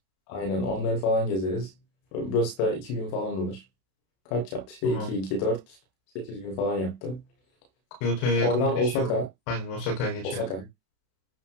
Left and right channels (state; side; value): late; right; 32 ms